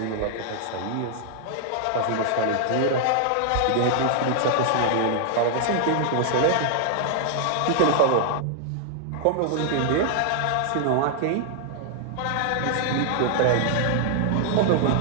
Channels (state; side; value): different; both; correlation -0.01